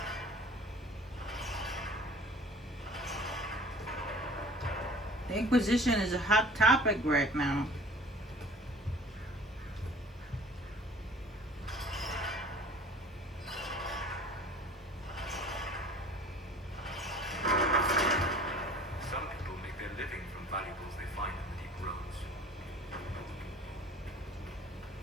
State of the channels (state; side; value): normal; both; correlation 0.46